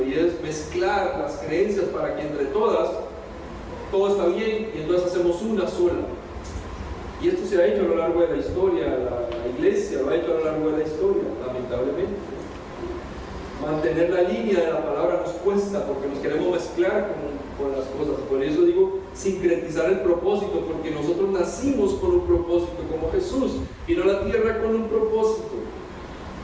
y es mezclar las creencias para que entre todas todo está bien, y entonces hacemos una sola. Y esto se ha hecho a lo largo de la historia, la iglesia lo ha hecho a lo largo de la historia, lamentablemente. Mantener la línea de la palabra nos cuesta porque nos queremos mezclar con las cosas. Por eso digo sincretizar el propósito, porque nosotros nacimos con un propósito, como Jesús vino a la tierra con un propósito.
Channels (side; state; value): both; identical; correlation 1.00